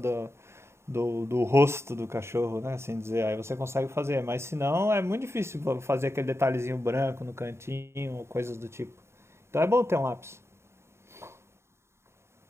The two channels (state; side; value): late; left; 0.13 ms